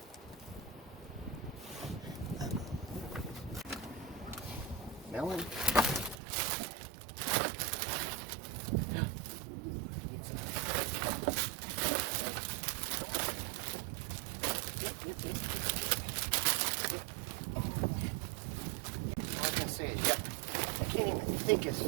Melon. All I can say is, yeah, I can't even think as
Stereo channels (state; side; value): drops out; left; at 6.2 s